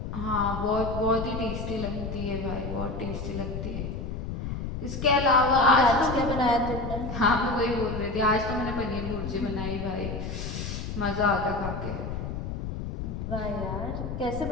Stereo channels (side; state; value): left; noise; rumble, 5 dB below the sound